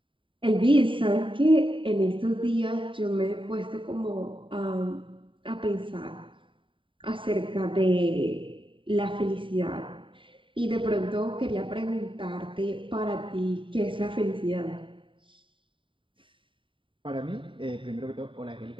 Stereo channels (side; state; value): left; late; 0.25 ms